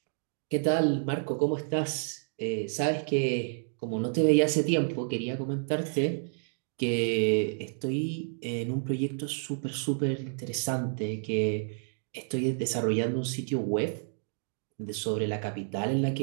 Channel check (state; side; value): silent; left; digital silence